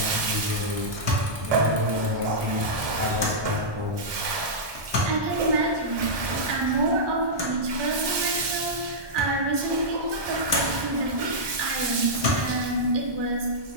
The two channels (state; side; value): late; left; 1.2 ms